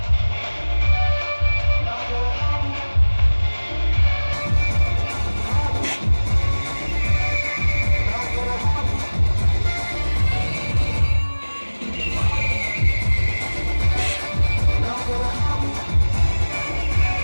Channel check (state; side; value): inverted; both; correlation -1.00